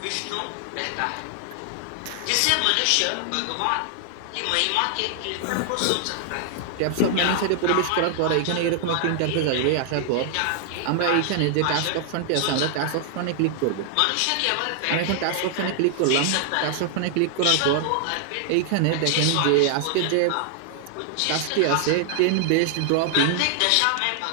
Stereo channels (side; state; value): both; different; correlation 0.00